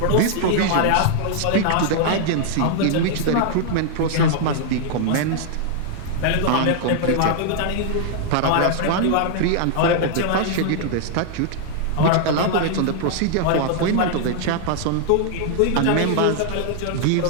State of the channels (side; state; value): both; different; correlation -0.01